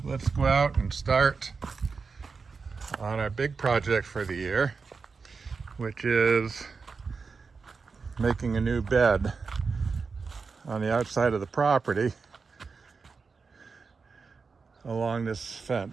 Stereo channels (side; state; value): left; quieter; 4.9 dB